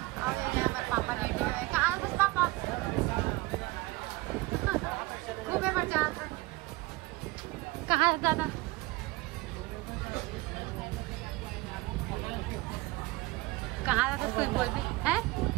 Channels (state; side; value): quieter; left; 20.9 dB